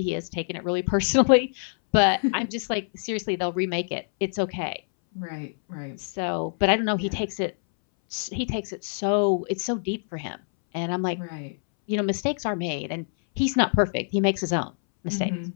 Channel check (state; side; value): silent; right; 61 dB below the other